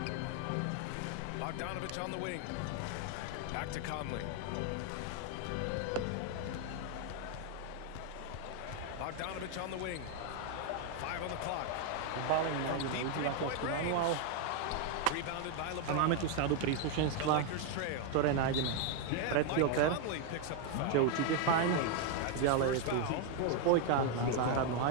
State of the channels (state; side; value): different; both; correlation 0.01